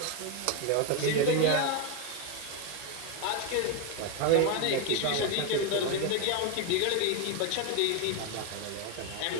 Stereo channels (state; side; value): different; both; correlation 0.02